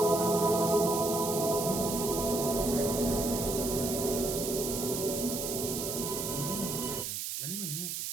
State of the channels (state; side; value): noise; right; hiss, 4 dB below the sound